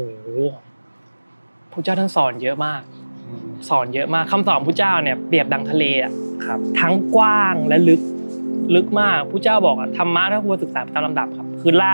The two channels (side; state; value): both; inverted; correlation -1.00